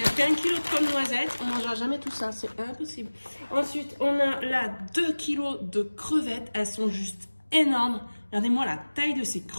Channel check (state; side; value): inverted; both; correlation -1.00